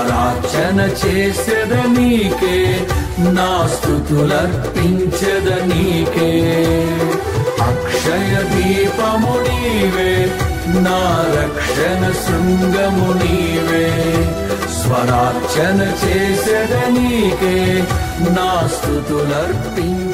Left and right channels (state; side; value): identical; both; correlation 1.00